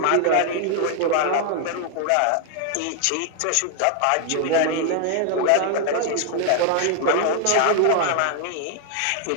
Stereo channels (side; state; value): both; different; correlation 0.00